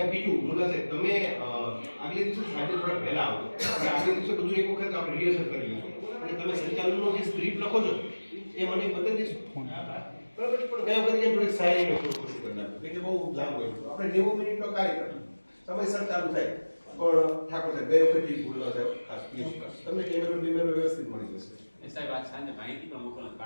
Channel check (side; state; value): both; inverted; correlation -1.00